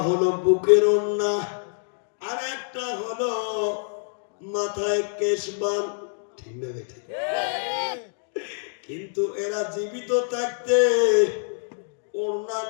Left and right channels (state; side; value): silent; right; 61 dB below the other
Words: হলো বুকের ওড়না আর একটা হলো মাথায় কেশবান, ঠিক না বেটা? কিন্তু এরা জীবিত থাকতে ওড়না